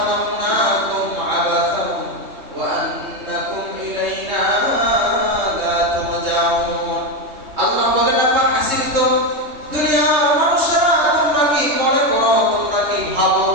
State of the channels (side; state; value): left; late; 3.2 ms